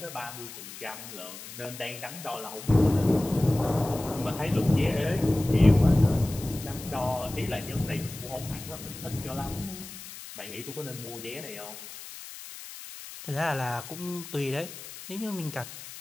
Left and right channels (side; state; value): left; noise; hiss, 13 dB below the sound